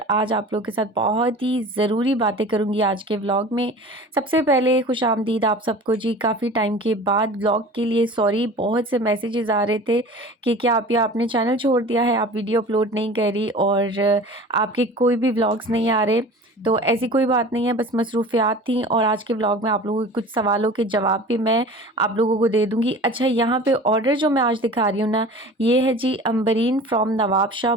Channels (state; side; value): normal; both; correlation 0.40